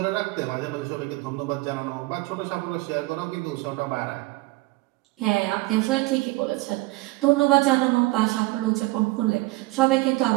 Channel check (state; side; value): quieter; left; 21.9 dB